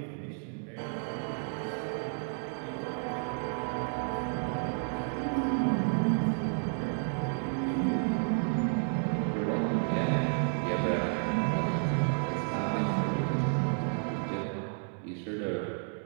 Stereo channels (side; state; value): left; silent; 56 dB below the other